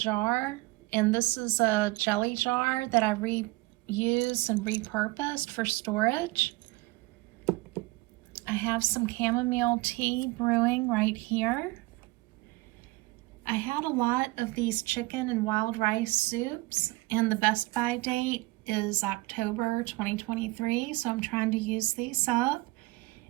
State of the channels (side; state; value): left; quieter; 22.4 dB